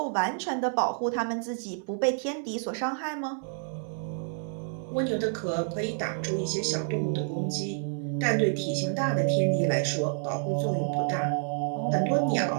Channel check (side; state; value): left; silent; 57 dB below the other